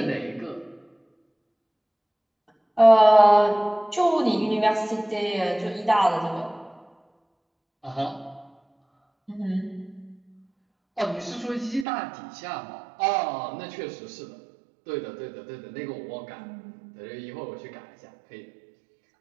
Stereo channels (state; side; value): drops out; left; at 11.9 s